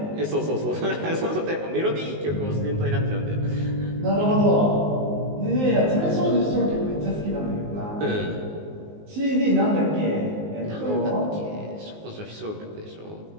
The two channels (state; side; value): late; left; 19 ms